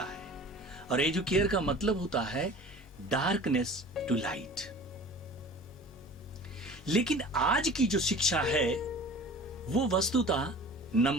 है और एजुकेयर का मतलब होता है डार्कनेस टू लाइट। लेकिन आज की जो शिक्षा है वो वस्तुतः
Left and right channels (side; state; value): both; normal; correlation 0.42